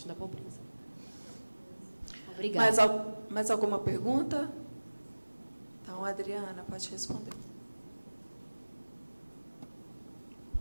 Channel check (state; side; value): inverted; both; correlation -1.00